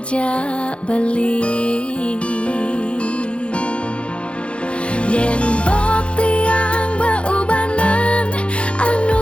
beli yen bok tiang beubanan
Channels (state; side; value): late; right; 0.059 ms